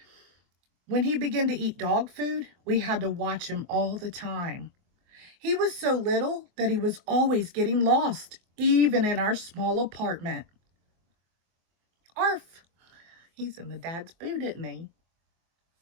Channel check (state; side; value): late; left; 24 ms